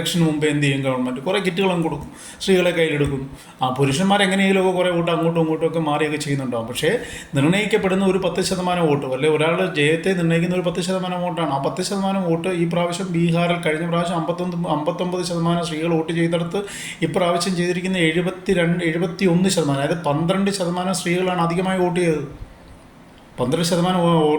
മുമ്പ് എന്ത് ചെയ്യും ഗവൺമെൻറ്? കുറേ കിറ്റുകളും കൊടുക്കും, സ്ത്രീകളെ കയ്യിലെടുക്കും. പുരുഷന്മാരെങ്ങനെയെങ്കിലുമൊക്കെ കുറേ വോട്ട് അങ്ങോട്ടും ഇങ്ങോട്ടുമൊക്കെ മാറിയൊക്കെ ചെയ്യുന്നുണ്ടാവും. പക്ഷേ നിർണ്ണയിക്കപ്പെടുന്ന ഒരു 10% വോട്ട്, അല്ലെങ്കിൽ ഒരാളുടെ ജയത്തെ നിർണ്ണയിക്കുന്ന ഒരു 10% വോട്ടാണ്. ആ 10% വോട്ട് ഈ പ്രാവശ്യം ബീഹാറിൽ കഴിഞ്ഞ പ്രാവശ്യം 59% സ്ത്രീകൾ വോട്ട് ചെയ്തെടുത്ത് ഇപ്രാവശ്യം ചെയ്തിരിക്കുന്ന 71%, അതായത് 12% സ്ത്രീകളാണ് അധികമായി വോട്ട് ചെയ്തത്. 12%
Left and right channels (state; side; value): identical; both; correlation 1.00